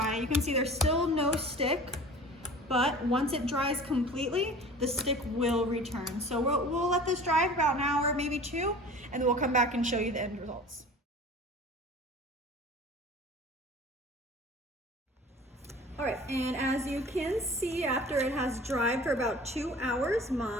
you can see there's still no stick, but once it dries completely, the stick will return. So we'll let this dry for about an hour, maybe two, and then we'll come back and show you the end results. All right, and as you can see, after it has dried for about 2 hours,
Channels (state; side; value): normal; both; correlation 0.42